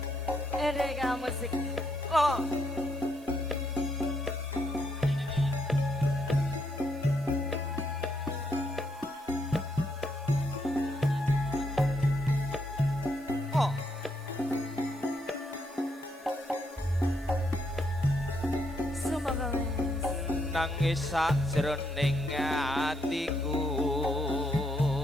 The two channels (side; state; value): right; noise; hiss, 24 dB below the sound